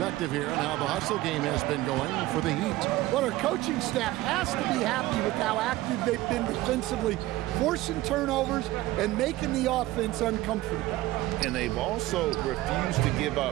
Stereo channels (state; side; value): quieter; left; 17.2 dB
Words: here on how the hustle game has been going for the Heat. Well, our coaching staff has to be happy with how active they've been defensively, forcing turnovers and making the offense uncomfortable. And they've also refused to give